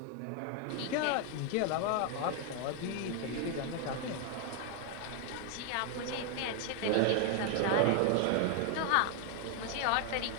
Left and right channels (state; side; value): different; both; correlation 0.00